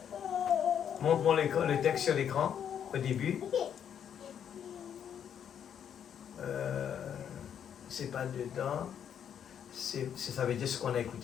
Montre-moi le texte sur l'écran au début. C'est pas dedans. Ça veut dire ce qu'on a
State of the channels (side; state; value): right; quieter; 8.7 dB